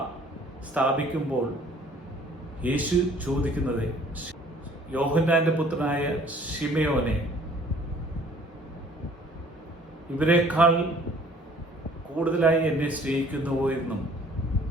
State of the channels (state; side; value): normal; both; correlation 0.55